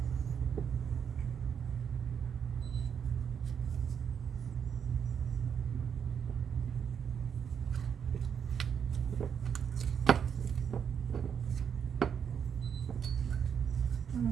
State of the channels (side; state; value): left; quieter; 7.5 dB